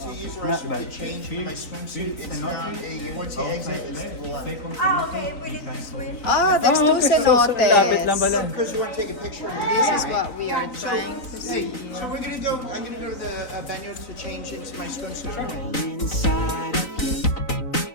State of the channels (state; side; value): late; right; 3.9 ms